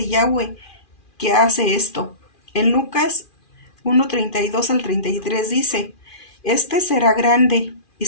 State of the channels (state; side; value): late; right; 2.4 ms